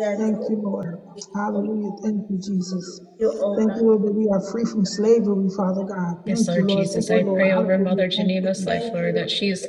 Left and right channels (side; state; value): both; identical; correlation 1.00